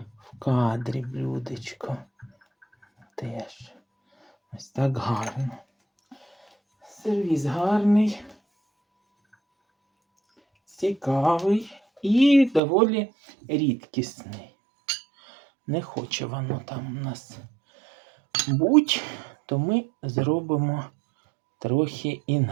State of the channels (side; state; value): left; drops out; at 12.6 s